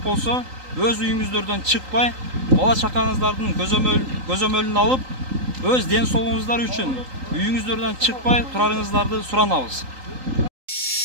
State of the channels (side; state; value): left; late; 3.8 ms